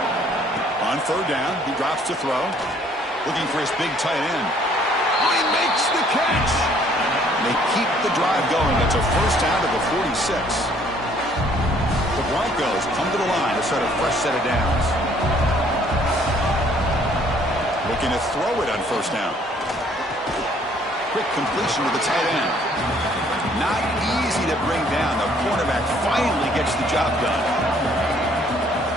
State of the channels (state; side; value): normal; both; correlation 0.61